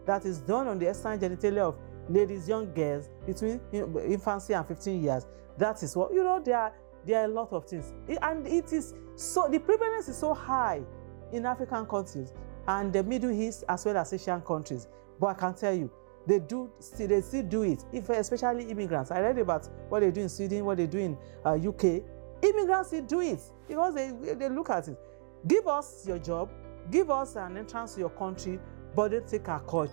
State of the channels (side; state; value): left; silent; digital silence